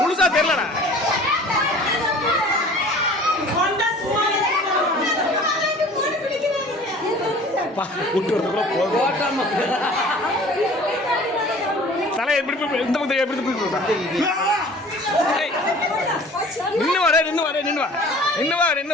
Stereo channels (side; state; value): both; normal; correlation 0.47